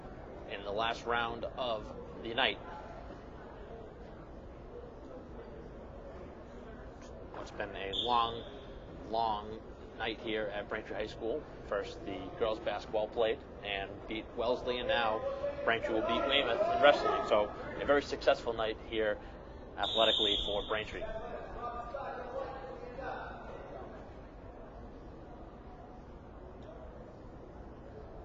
in the last round of the night. It's been a long night here at Braintree High School. First, the girls basketball played and beat Wellesley, and now Braintree will beat Weymouth in wrestling. So a very successful night here athletically for Braintree.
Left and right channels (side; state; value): both; identical; correlation 1.00